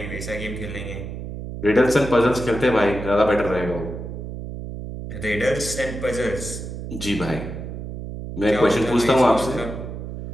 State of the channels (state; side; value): noise; right; hum, 8 dB below the sound